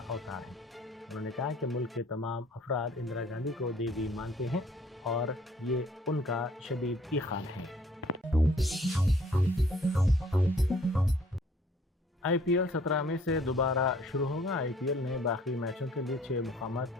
अवतार है। उन्होंने कहा कि मुल्क के तमाम अफराद इंदिरा गांधी को देवी मानते हैं और ये उनका शदीद ईखान है। IPL 17 में से दोबारा शुरू होगा। IPL ने बाकी मैचों के लिए 6 मुकामात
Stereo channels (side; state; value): both; normal; correlation 0.58